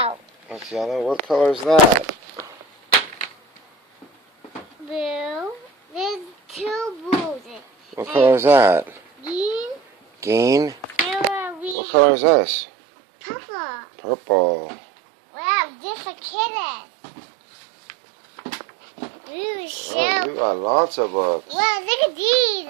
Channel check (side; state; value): left; drops out; at 11.8 s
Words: That's yellow. What color is that? Blue. There's two blues. What color is that? Green. Green. We What color is this? purple. Purple. Wow, different kittens. Really so. Oh, you got lots of books. Wow, look at